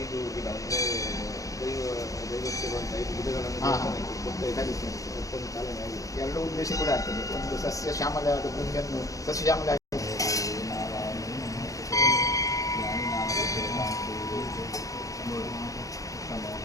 ಗಿಡ ಅಂದರೆ ದೈವಕ್ಕೆ ಬಂದ 5 ಗಿಡಗಳನ್ನು ಮತ್ತೊಂದು ಚಾಲನೆ ಆಗಿದೆ. ಎರಡು ಉದ್ದೇಶ ಕೂಡ ಆಗ್ತದೆ. ಒಂದು ಸಸ್ಯ ಶ್ಯಾಮಲ ಭೂಮಿಯನ್ನು ಸಸ್ಯ ಶ್ಯಾಮಲ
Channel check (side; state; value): right; late; 0.16 ms